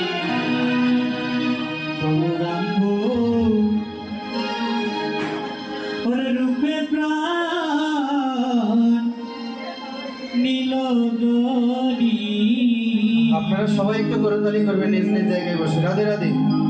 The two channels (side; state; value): both; identical; correlation 1.00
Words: গৌরাঙ্গ রূপে প্রাণ নীল। আপনারা সবাই একটু করতালি করবেন নিজ নিজ জায়গায় বসে। রাধে রাধে।